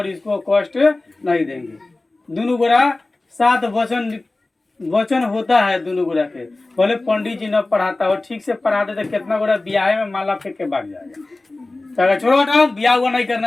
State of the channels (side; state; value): right; quieter; 3.0 dB